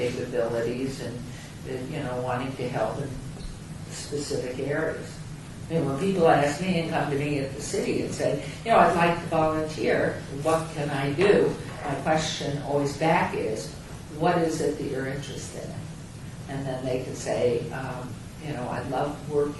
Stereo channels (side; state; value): both; identical; correlation 1.00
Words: and you know, wanting to help in specific areas. I mean, when people ask me and come to me at the city and say, you know, I'd like to volunteer, what can I do? My question always back is, what is it that you're interested in? And then they can say, you know, I love